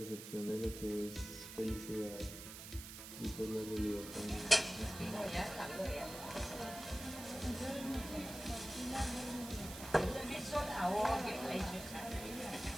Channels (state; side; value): noise; right; hiss, 11 dB below the sound